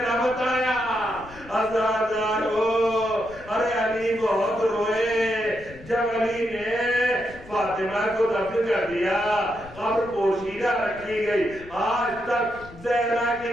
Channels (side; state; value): left; noise; rumble, 19 dB below the sound